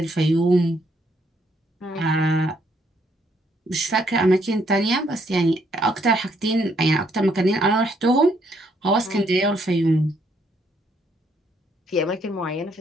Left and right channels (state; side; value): normal; both; correlation 0.71